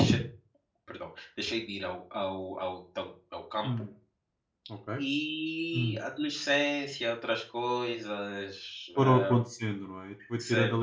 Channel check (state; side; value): identical; both; correlation 1.00